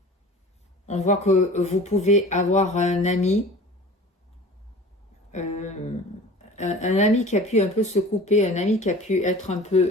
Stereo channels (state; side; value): normal; both; correlation 0.41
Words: On voit que vous pouvez avoir un ami, un ami qui a pu un peu se couper, un ami qui a pu être un